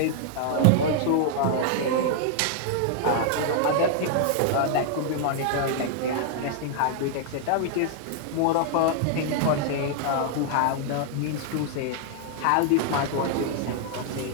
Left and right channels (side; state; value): both; different; correlation -0.01